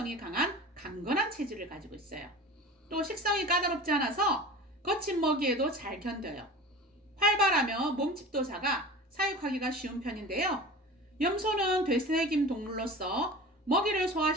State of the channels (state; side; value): normal; both; correlation 0.36